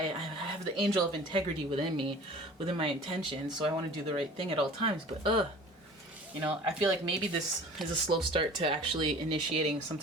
have the angel of integrity within me, within my intentions, so I want to do the right thing at all times. But you know, I feel like maybe this is a slow start to actually initiating some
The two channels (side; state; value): both; normal; correlation 0.44